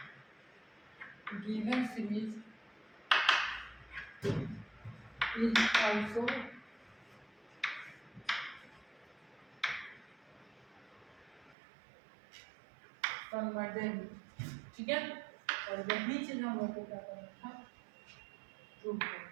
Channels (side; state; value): left; drops out; at 11.6 s